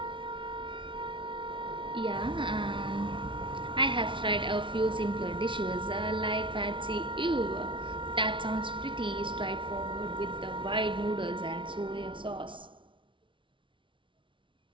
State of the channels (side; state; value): left; late; 0.24 ms